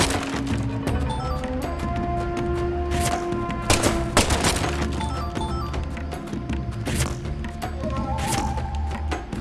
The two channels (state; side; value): identical; both; correlation 1.00